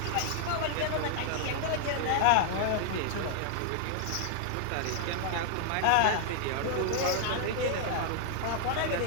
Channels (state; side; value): different; both; correlation -0.01